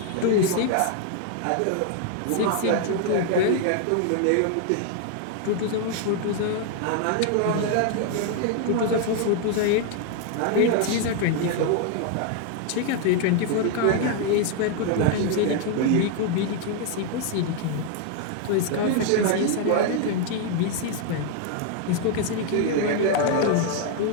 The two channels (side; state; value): both; different; correlation 0.00